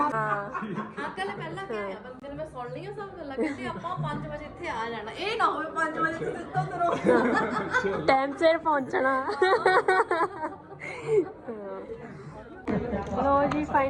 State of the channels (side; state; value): both; identical; correlation 1.00